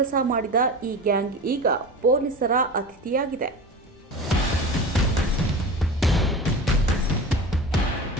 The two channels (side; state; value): both; normal; correlation 0.31